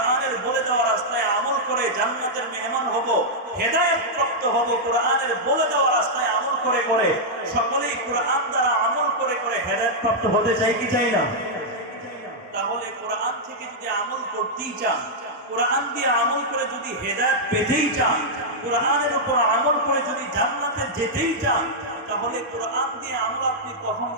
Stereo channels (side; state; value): both; normal; correlation -0.06